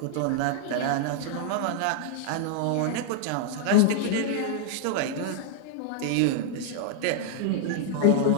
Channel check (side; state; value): both; different; correlation -0.01